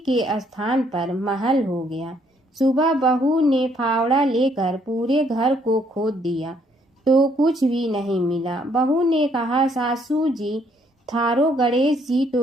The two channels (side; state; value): both; normal; correlation 0.68